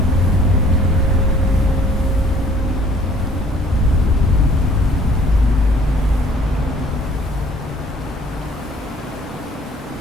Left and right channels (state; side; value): normal; both; correlation 0.57